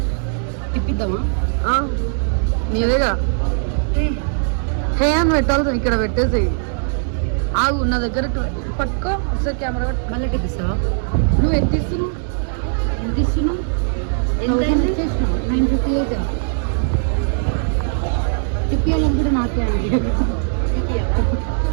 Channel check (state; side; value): silent; left; 66 dB below the other